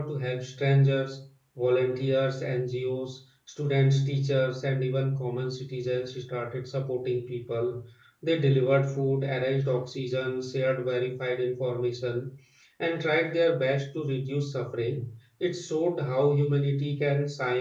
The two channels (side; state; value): both; identical; correlation 1.00